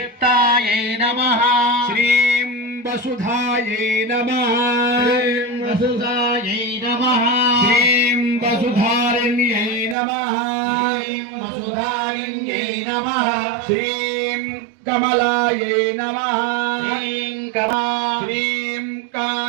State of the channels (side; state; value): left; drops out; at 10.0 s